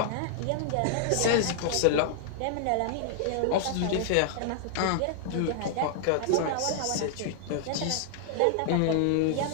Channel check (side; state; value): both; different; correlation -0.01